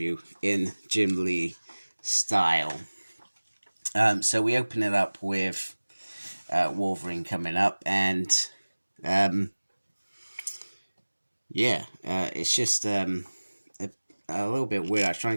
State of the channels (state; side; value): inverted; both; correlation -1.00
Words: in Jim Lee style. So we open it up with Wolverine coming up, and it's just a little bit weird. I was trying